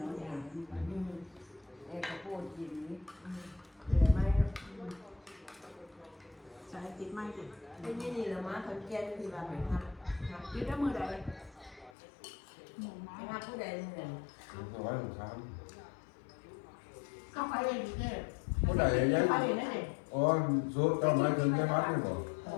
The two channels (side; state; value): right; drops out; at 11.9 s